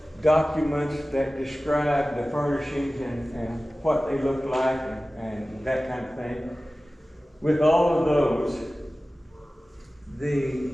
documents that describe the furnishings and what they look like and that kind of thing. With all of those,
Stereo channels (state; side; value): normal; both; correlation 0.97